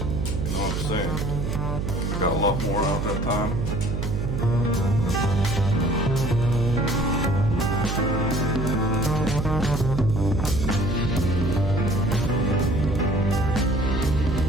know what I'm saying? I got a lot more out that time.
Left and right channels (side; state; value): right; noise; hum, 2 dB below the sound